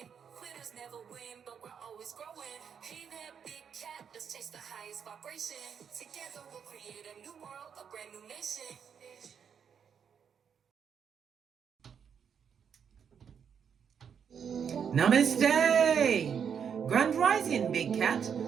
Quitters never win, but we're always growing. Hey there, big cat, let's chase the highest vibration. Together we'll create a new world, a brand new nation. Namaste! Grand Rising, Big Cat.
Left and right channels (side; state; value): left; quieter; 7.4 dB